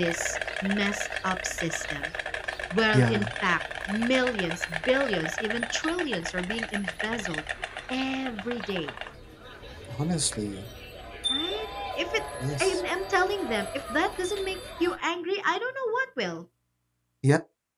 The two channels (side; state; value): both; identical; correlation 1.00